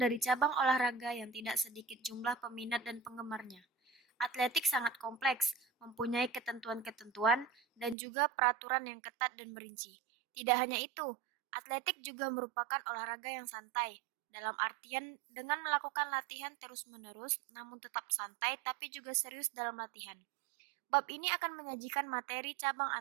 cabang olahraga yang tidak sedikit jumlah peminat dan penggemarnya. Atletik sangat kompleks, mempunyai ketentuan-ketentuan dan juga peraturan yang ketat dan merinci. Tidak hanya itu, atletik juga merupakan olahraga yang santai, dalam artian dengan melakukan latihan terus-menerus namun tetap santai tapi juga serius dalam latihan. Bab ini akan menyajikan materi cabang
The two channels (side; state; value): left; drops out; at 8.0 s